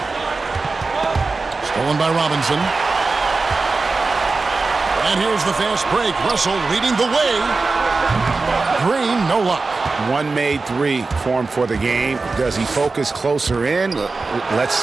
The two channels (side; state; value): left; quieter; 3.9 dB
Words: Stolen by Robinson. And here's the fast break. Russell leading the way. Green, no luck. One made 3 formed for the game. Does he focus closer in? Let's